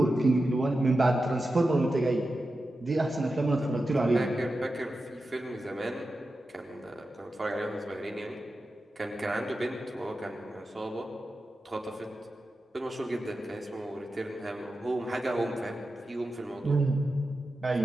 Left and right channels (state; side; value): normal; both; correlation 0.91